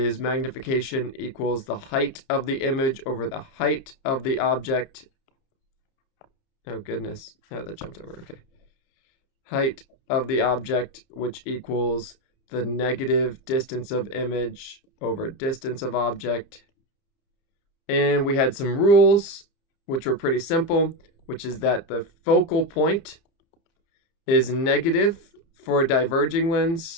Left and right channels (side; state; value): right; late; 30 ms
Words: magnification equals the height of the image over the height of the object. Oh, goodness. Oh, that jumped over. Okay. Height of the object, which equals the negative distance of image over distance of object. And we had some rules, which were pretty simple, which is that the focal point is negative for a diverging